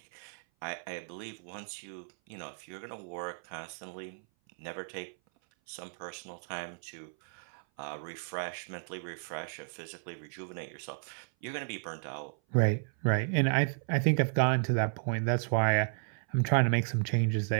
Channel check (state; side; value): silent; left; 55 dB below the other